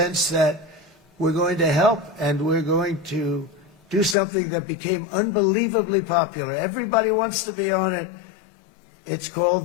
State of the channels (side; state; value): right; drops out; at 4.2 s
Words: that we're going to help and we're going to do something that became unbelievably popular. Everybody wants to be on it. It's